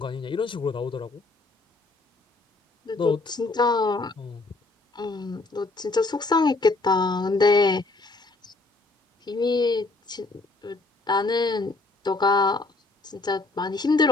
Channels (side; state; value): right; quieter; 3.4 dB